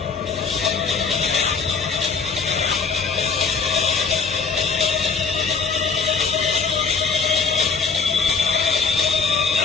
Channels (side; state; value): right; quieter; 5.1 dB